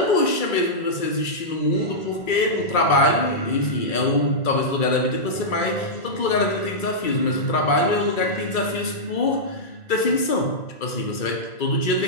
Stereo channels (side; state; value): right; late; 2.3 ms